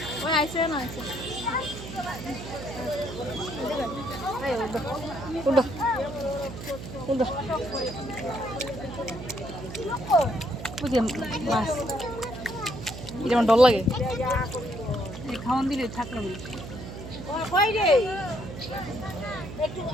মাছ এটা আমার ডর লাগে খাওয়ান দিলে থাকলাম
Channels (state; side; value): noise; right; hum, 10 dB below the sound